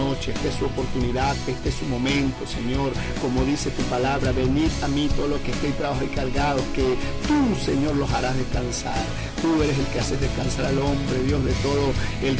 esta es su oportunidad, este es su momento, Señor. Como dice tu palabra, venid a mí todos los que estéis trabajados y cargados, que tú, Señor, los harás descansar. Tú eres el que haces descansar al hombre, Dios, de todo el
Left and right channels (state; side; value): identical; both; correlation 1.00